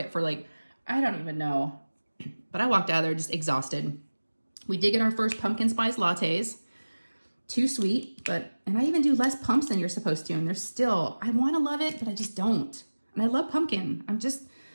for like, I don't even know. But I walked out of there just exhausted. We did get our first pumpkin spice lattes. Too sweet, and I even do less pumps than you're supposed to. And they're still, I want to love it, but I just don't. And I love pumpkin.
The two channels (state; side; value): inverted; both; correlation -1.00